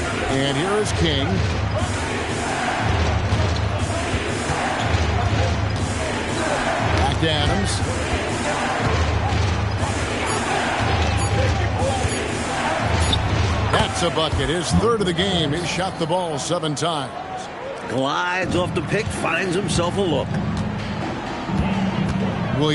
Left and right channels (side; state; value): both; identical; correlation 1.00